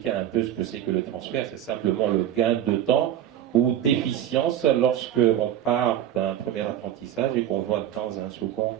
un peu ce que c'est que le transfert. C'est simplement le gain de temps ou d'efficience lorsque on part d'un premier apprentissage et qu'on va dans un second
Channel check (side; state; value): left; quieter; 11.4 dB